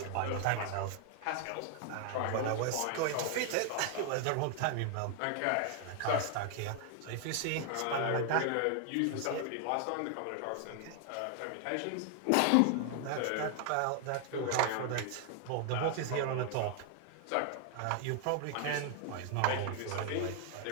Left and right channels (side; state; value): both; different; correlation 0.00